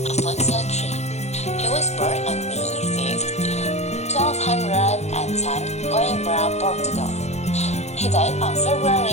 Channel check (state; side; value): late; right; 0.32 ms